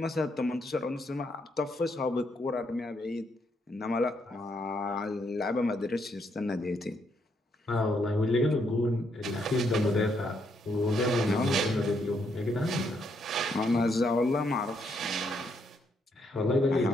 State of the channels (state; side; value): normal; both; correlation 0.75